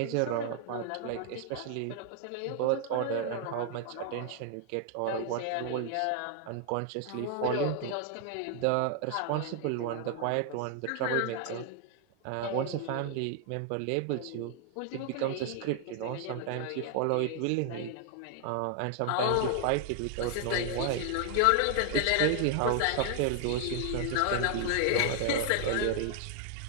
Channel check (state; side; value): different; both; correlation 0.00